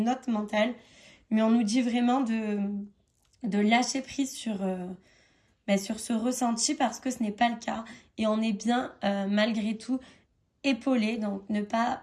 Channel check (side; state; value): both; identical; correlation 1.00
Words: mental. Mais on nous dit vraiment de lâcher prise sur ce ressenti parce que ce n'est pas le cas. Et on est bien, malgré tout, épaulé. Donc ne pas